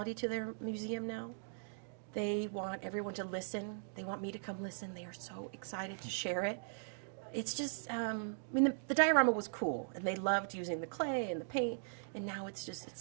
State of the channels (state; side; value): silent; left; digital silence